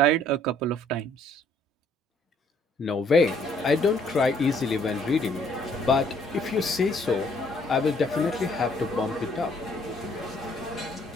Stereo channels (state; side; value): normal; both; correlation 0.64